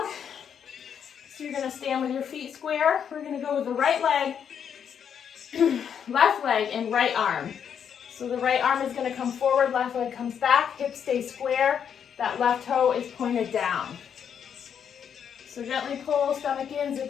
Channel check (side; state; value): right; quieter; 8.0 dB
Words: So you're going to stand with your feet square. We're going to go with the right leg, left leg, and right arm. So the right arm is going to come forward, left leg comes back, hips stay square, that left toe is pointed down. So gently pull stomach in,